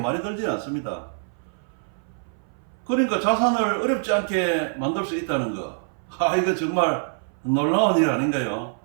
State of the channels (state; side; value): silent; left; 59 dB below the other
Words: 들지 않습니다. 그러니까 자산을 어렵지 않게 만들 수 있다는 거. 이거 정말 놀라운 일 아닌가요?